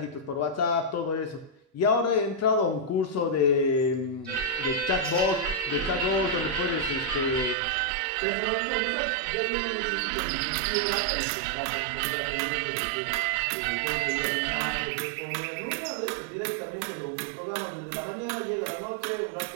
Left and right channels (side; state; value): left; drops out; at 7.6 s